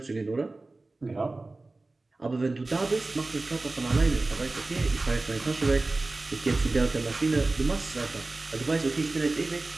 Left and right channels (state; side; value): quieter; left; 3.2 dB